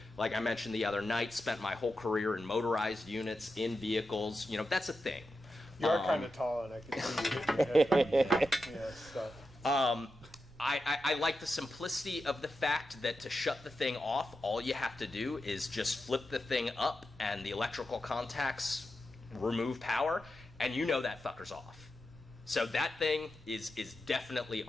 like I mentioned the other night, spent my whole career in motorized units, in vehicles, you know, that's a thing. You are kind of tall, and I can see you hitting your head. Stuff. I like the simplicity of the fact that to shut the thing off, all you have to do is just flip the thing up, and the electrical contacts remove power, and you know that fucker's off. So that thing is definitely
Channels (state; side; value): normal; both; correlation 0.89